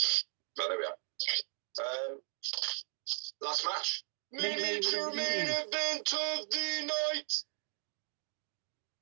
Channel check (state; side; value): silent; left; 53 dB below the other